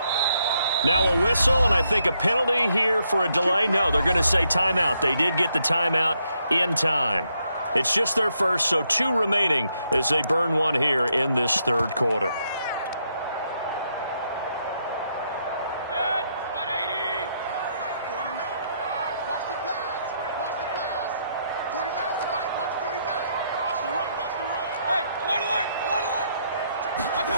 Now a whistle, and I think a penalty here for a delay. No, they're going to say timeout. They did get the timeout in time. It's just their first, so 2 remaining as they burn one here in this third quarter.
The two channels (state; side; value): inverted; both; correlation -0.76